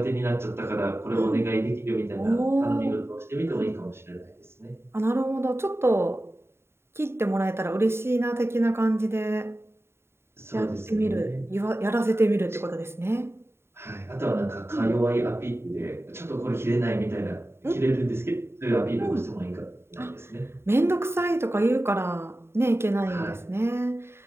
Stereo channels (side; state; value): left; late; 0.12 ms